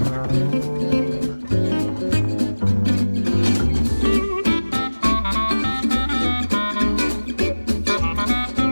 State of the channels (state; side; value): inverted; both; correlation -1.00